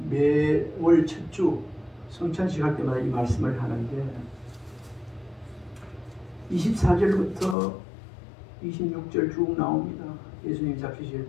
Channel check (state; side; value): drops out; right; at 7.6 s